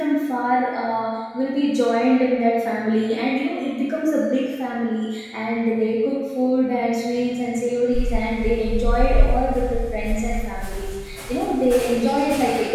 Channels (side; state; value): both; identical; correlation 1.00